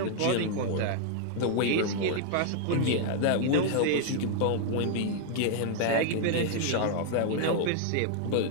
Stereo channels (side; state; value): both; different; correlation -0.01